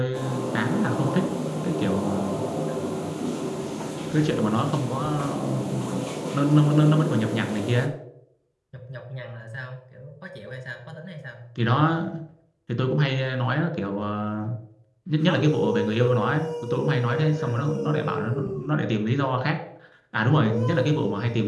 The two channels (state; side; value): identical; both; correlation 1.00